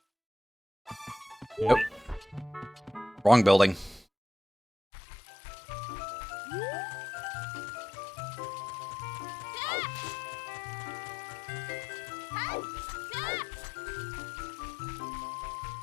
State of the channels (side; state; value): right; drops out; at 4.0 s